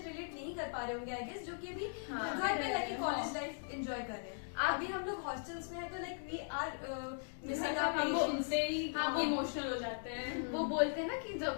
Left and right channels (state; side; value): silent; right; digital silence